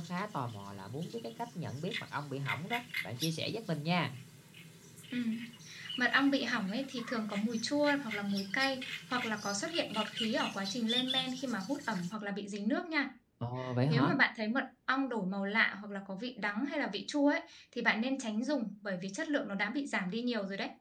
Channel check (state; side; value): identical; both; correlation 1.00